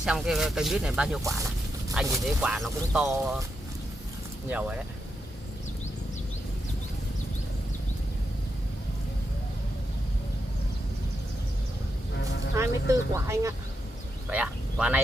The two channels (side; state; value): both; normal; correlation 0.85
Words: cái cây mít này bao nhiêu quả này. Anh nhìn thấy quả nó cũng to nhiều rồi đấy. 24 quả anh ạ. Vậy à? Quả